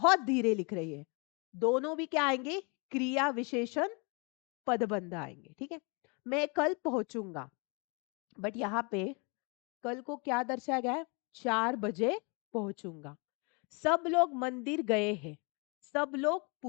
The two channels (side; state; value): right; quieter; 32.4 dB